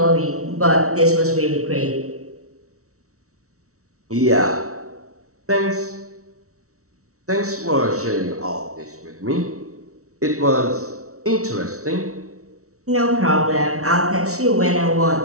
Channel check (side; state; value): left; late; 0.64 ms